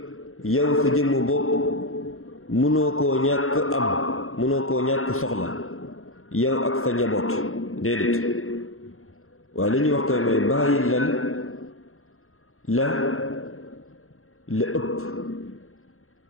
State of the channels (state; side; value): late; right; 0.62 ms